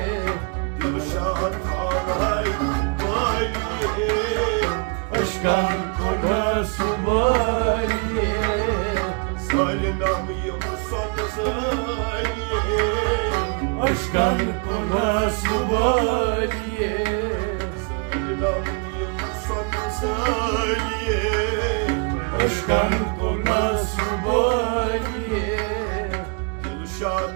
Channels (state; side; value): quieter; left; 35.4 dB